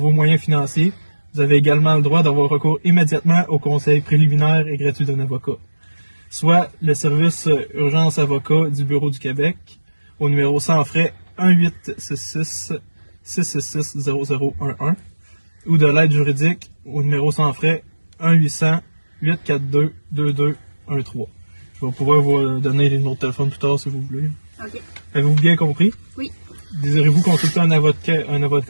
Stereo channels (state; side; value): inverted; both; correlation -1.00